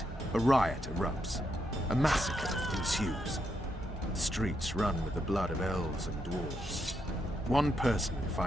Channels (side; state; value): both; normal; correlation 0.81